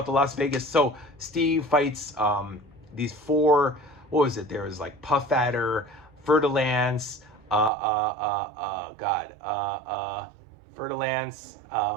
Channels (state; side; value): drops out; left; at 7.7 s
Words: the Las Vegas. So Steve fights these 4... What was it? There was like Puff Adder, Fer-de-Lance, Fer-de-Lance,